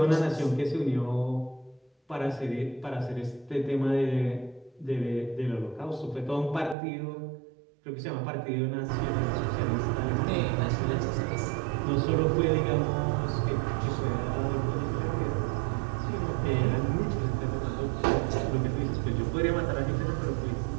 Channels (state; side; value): drops out; left; at 6.8 s